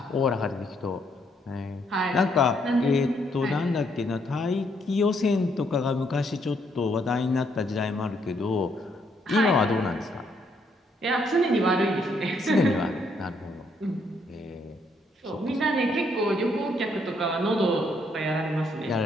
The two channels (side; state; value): both; normal; correlation 0.72